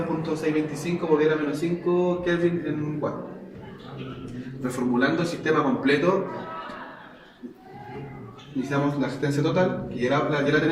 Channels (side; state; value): both; identical; correlation 1.00